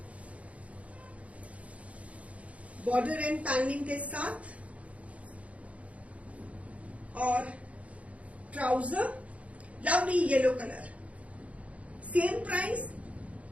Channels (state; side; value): late; left; 0.065 ms